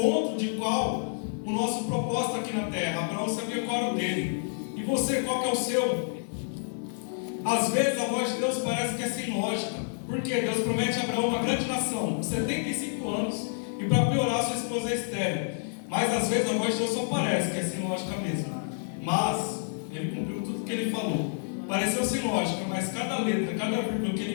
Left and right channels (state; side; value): silent; right; digital silence